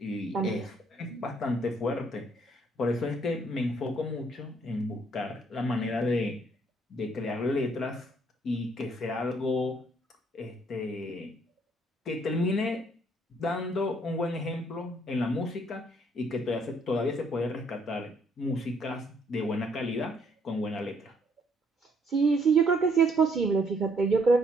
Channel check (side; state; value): both; normal; correlation 0.67